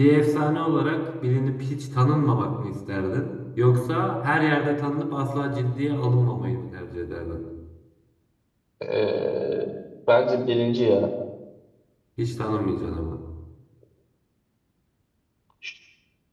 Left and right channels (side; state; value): both; identical; correlation 1.00